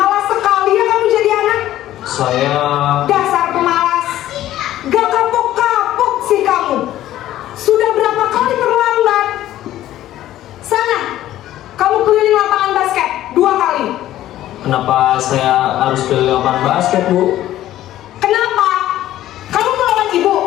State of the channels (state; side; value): quieter; right; 13.6 dB